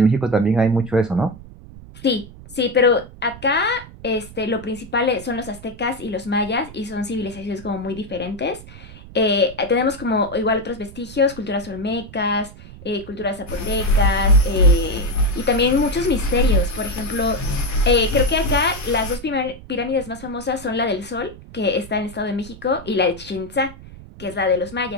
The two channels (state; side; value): noise; right; rumble, 17 dB below the sound